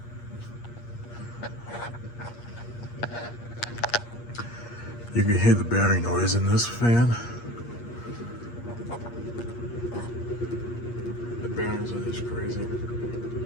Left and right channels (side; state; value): right; late; 8.5 ms